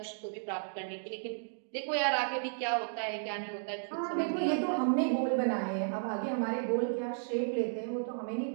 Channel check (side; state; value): left; silent; digital silence